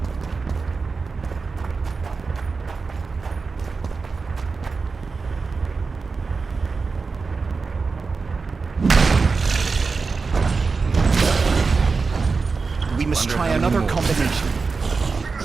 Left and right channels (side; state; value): left; quieter; 4.5 dB